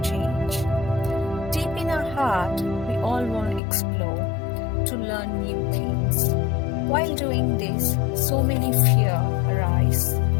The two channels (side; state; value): right; drops out; at 3.6 s